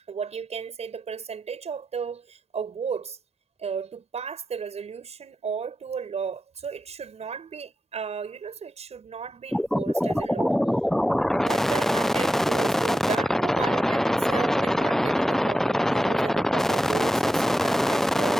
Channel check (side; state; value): both; normal; correlation 0.90